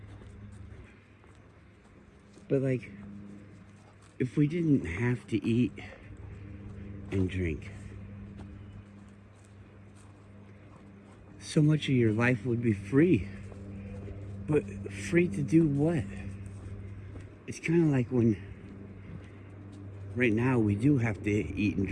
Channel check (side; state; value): both; identical; correlation 1.00